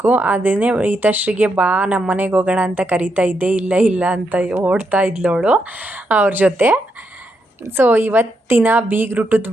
ಅದನ್ನೇ ಈತಶ್ರೀಗೆ ಬಾ ನಮ್ಮ ಮನೆಗೆ ಹೋಗೋಣ ಅಂತ ಕರಿತಾ ಇದ್ದೆ. ಇಲ್ಲ ಅಂತ ಓಡ್ತಾ ಇದ್ಲವಳು ಅವ್ರ ಜೊತೆ. ಸೊ ಇವತ್ತಿನ ಬೀಗ್ರೂಟದ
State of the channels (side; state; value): both; normal; correlation 0.81